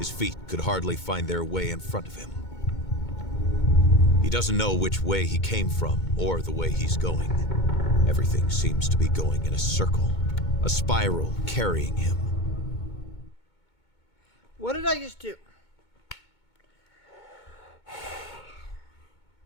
feet could hardly find their way in front of him. He doesn't know which way he came from or the way he's going. Everything seems to be going in a circle, a spiral carrying him. What did I just do?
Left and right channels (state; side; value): late; right; 2.2 ms